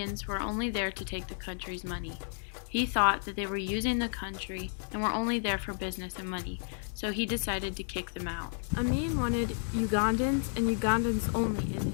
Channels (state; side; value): silent; right; digital silence